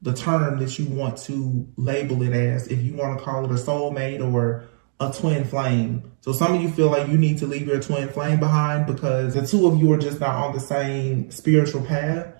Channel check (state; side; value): silent; left; digital silence